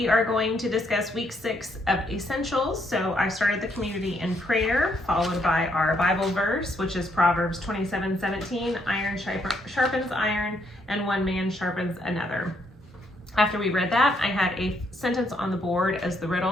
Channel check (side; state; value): both; normal; correlation 0.73